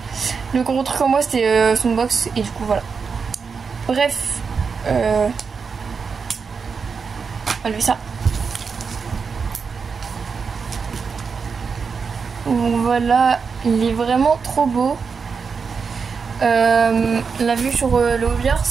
Le gros truc en moi c'était son box. Et du coup voilà. Bref. On va lever ça. Donc voilà, il est vraiment trop beau. La vue sur le hobby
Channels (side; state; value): left; quieter; 5.5 dB